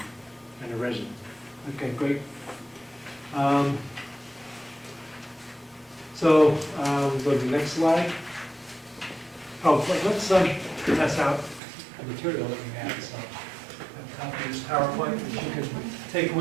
a resident. Okay, great. So we'll go to the next slide. Oh, let's pass out the material that we have. So a copy of this PowerPoint that you can take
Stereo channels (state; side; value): drops out; left; at 11.6 s